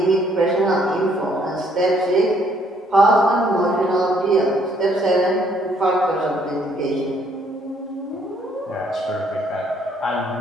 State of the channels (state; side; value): normal; both; correlation 0.66